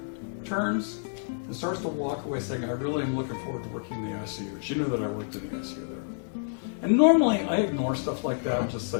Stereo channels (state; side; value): silent; right; digital silence